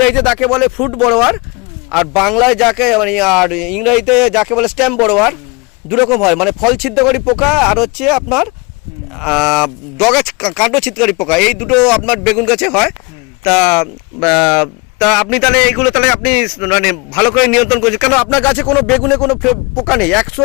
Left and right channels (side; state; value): right; quieter; 27.9 dB